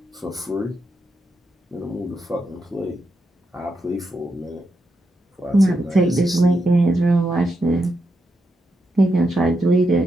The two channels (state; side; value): normal; both; correlation 0.84